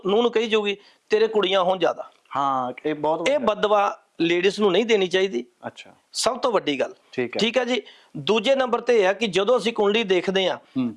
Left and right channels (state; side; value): identical; both; correlation 1.00